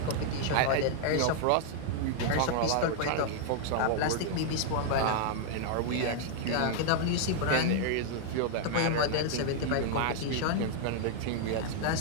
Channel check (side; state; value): both; different; correlation 0.00